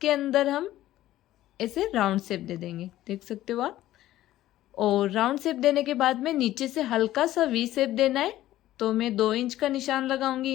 अंदर हम ऐसे राउंड शेप दे देंगे, देख सकते हो आप। और राउंड शेप देने के बाद में नीचे से हल्का सा वी शेप देना है। तो मैं 2 इंच का निशान लगाऊंगी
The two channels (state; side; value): quieter; right; 14.4 dB